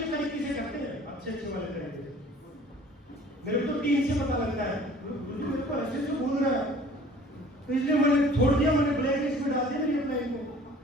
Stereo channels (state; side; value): normal; both; correlation 0.50